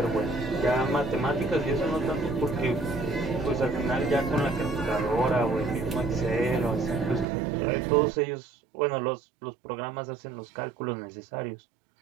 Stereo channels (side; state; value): left; drops out; at 7.2 s